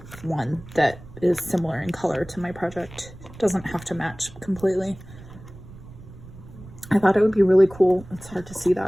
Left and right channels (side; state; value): right; noise; rumble, 18 dB below the sound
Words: one that is similar in color to my project. Doesn't have to match completely. I thought it would be really cool. It's hard to see